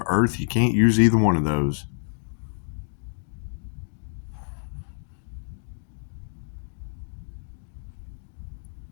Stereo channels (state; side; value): silent; right; 55 dB below the other